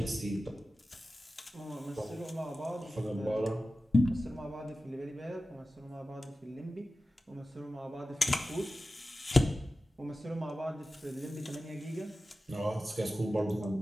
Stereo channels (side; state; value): both; normal; correlation 0.94